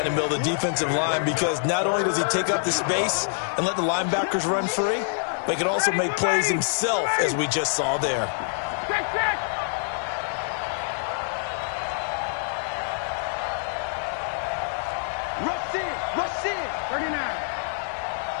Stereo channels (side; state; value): right; silent; digital silence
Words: in the middle of the defensive line, because not only does he take up the space and let the linebackers run free, but he can also make plays himself, as we just saw there. Check. Rush in. 39.